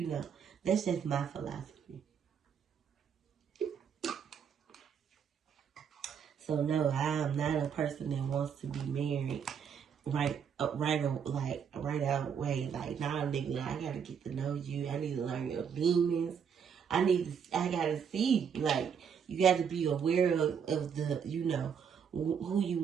That's just my philosophy. So no, I am not a person that wants to be married right out way. Like, nah, nigga, I gotta get to know you. I need to learn your demons. I gotta see, like, you got to be aware of the, who you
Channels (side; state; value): left; quieter; 7.3 dB